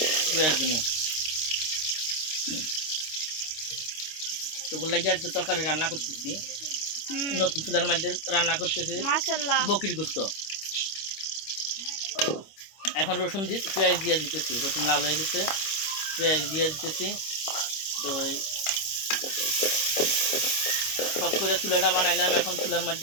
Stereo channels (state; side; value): late; right; 25 ms